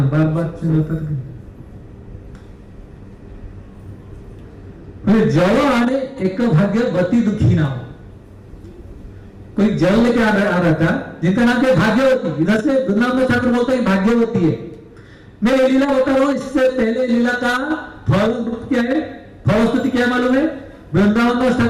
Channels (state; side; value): identical; both; correlation 1.00